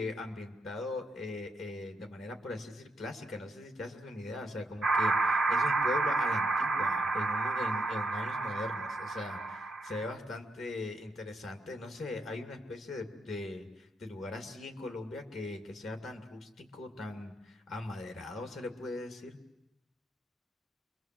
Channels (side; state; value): both; normal; correlation 0.79